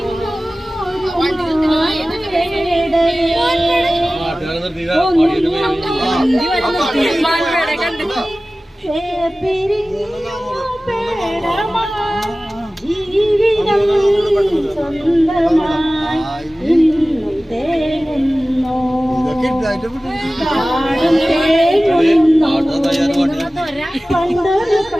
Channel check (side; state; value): both; normal; correlation 0.97